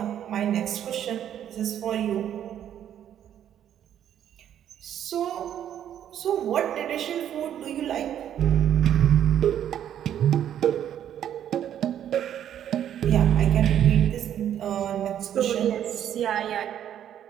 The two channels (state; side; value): quieter; left; 10.3 dB